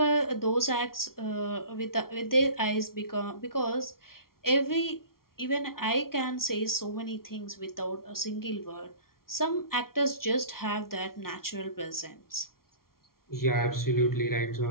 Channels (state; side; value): late; right; 0.93 ms